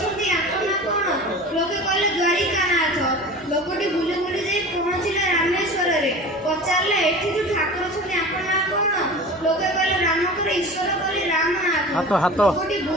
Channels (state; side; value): normal; both; correlation 0.36